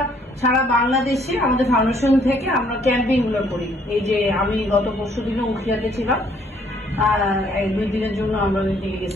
সারা বাংলাদেশে আমাদের ফাউন্ডেশন থেকে আমরা ক্যাম্পিং গুলো করি। এই যে আমি গত পরশু দিনে উখিয়াতে ছিলাম, 2 দিনের জন্য আমরা ওই দিকে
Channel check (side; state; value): both; normal; correlation 0.64